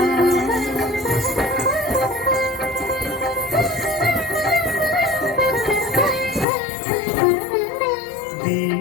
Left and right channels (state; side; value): drops out; right; at 6.5 s